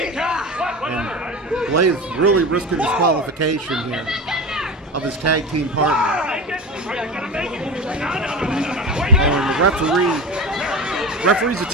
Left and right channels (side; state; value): both; normal; correlation 0.28